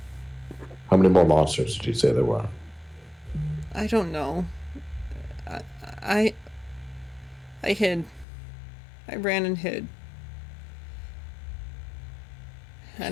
How many more monsters did you say there were? I don't know. I I hid. I ran and hid.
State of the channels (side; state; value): right; drops out; at 8.2 s